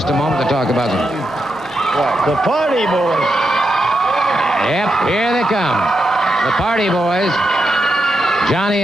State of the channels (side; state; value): both; normal; correlation 0.85